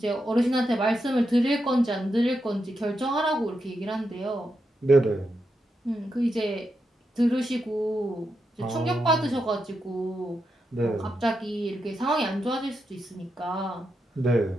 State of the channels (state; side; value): normal; both; correlation 0.85